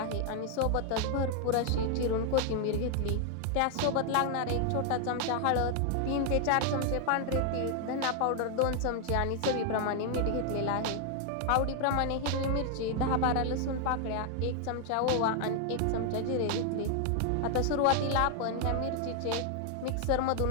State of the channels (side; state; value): both; different; correlation 0.00